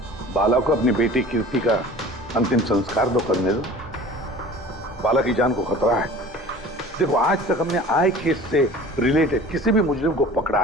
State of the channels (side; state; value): both; normal; correlation 0.43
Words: बाला को अपनी बेटी कीर्ति का अंतिम संस्कार तो करने दो। बाला की जान को खतरा है। देखो, आज तक हमने आए केस से रिलेटेड किसी भी मुजरिम को पकड़ा